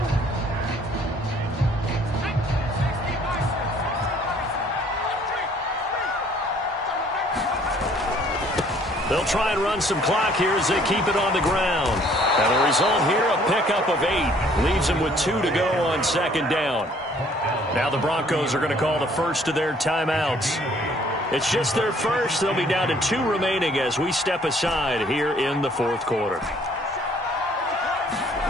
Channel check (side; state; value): both; normal; correlation 0.59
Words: They'll try and run some clock here as they keep it on the ground. And the result here, a pickup of 8. Leaves them with 2 to go on second down. Now the Broncos are going to call the first of their timeouts. It's just their first. They'll be down to 2 remaining as we step aside here in the fourth quarter.